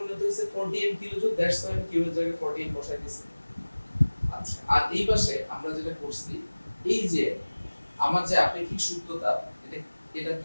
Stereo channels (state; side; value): inverted; both; correlation -1.00